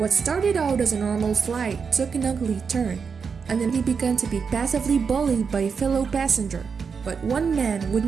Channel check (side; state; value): left; quieter; 5.8 dB